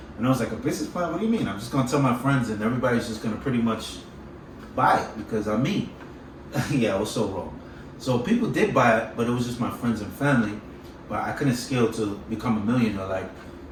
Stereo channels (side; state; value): both; identical; correlation 1.00